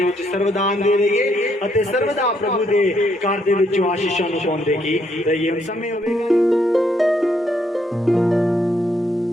ਵਿੱਚ ਸਰਵਦਾਨ ਦੇ ਰਹੀਏ ਅਤੇ ਸਰਵਦਾ ਪ੍ਰਭੂ ਦੇ ਘਰ ਦੇ ਵਿੱਚੋਂ ਆਸ਼ੀਸ਼ਾਂ ਨੂੰ ਪਾਉਂਦੇ ਕੀ ਰਹੀਏ ਹੁਣ ਸਮੇਂ ਹੋਵੇਗਾ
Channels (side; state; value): both; normal; correlation 0.73